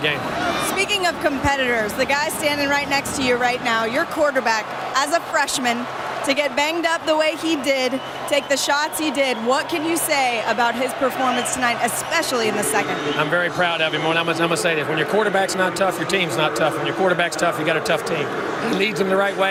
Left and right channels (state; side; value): identical; both; correlation 1.00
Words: Speaking of competitors, the guy standing right next to you right now, your quarterback, as a freshman, to get banged up the way he did, take the shots he did, what can you say about his performance tonight, especially in the second? I'm very proud of him. I'm going to say this. When your quarterback's not tough, your team's not tough. When your quarterback's tough, you got a tough team. He leads them the right